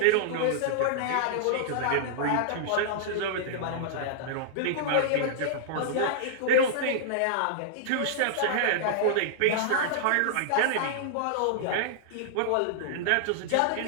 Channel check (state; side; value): different; both; correlation -0.01